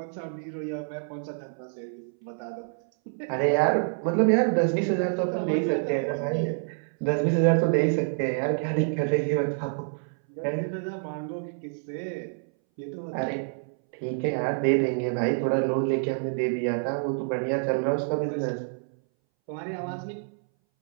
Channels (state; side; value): silent; left; 60 dB below the other